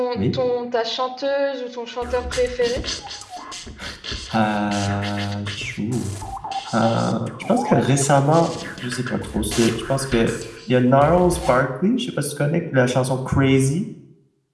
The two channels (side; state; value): both; identical; correlation 1.00